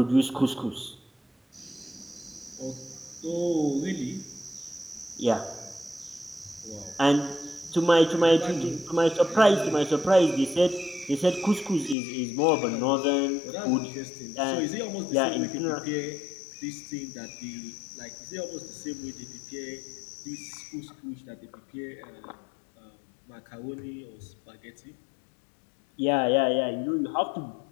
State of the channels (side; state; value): right; drops out; at 12.0 s